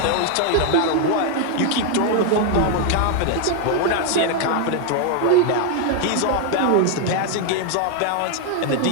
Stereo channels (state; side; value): different; both; correlation 0.00